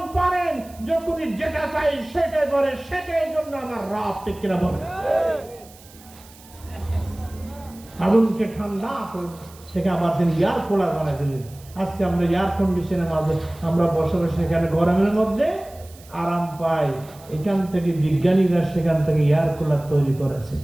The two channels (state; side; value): noise; right; hiss, 23 dB below the sound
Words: পারেন, যখনই যেটা চাই সেটাই করে, সেটাই জন্য আমার রব। ঠিক কিনা বলেন? আগুনকে ঠান্ডা থেকে আবার তিনি এয়ার কুলার বানিয়ে দিলেন। আজকে আমরা এয়ার কন্ডিশনের মাঝে আমরা বসে বসে এখানে গরমের মধ্যে আরাম পাই। এখান থেকে বিজ্ঞানীরা সেখান থেকে এয়ার কুলার তৈরি করেছে।